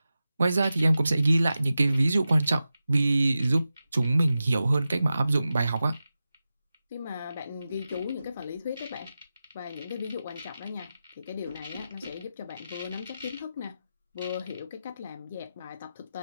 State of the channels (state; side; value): inverted; both; correlation -0.93